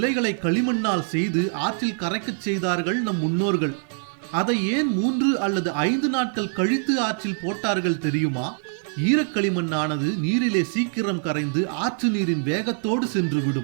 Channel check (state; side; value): silent; left; 63 dB below the other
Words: களிமண்ணால் செய்து ஆற்றில் கரைக்கச் செய்தார்கள் நம் முன்னோர்கள். அதை ஏன் 3 அல்லது 5 நாட்கள் கழித்து ஆற்றில் போட்டார்கள் தெரியுமா? ஈரக்களிமண்ணானது நீரிலே சீக்கிரம் கரைந்து ஆற்று நீரின் வேகத்தோடு